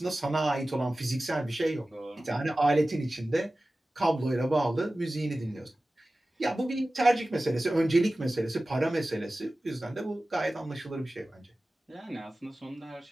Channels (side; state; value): both; normal; correlation 0.96